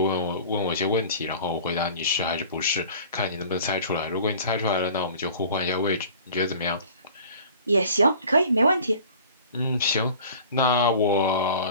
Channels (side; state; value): both; inverted; correlation -0.45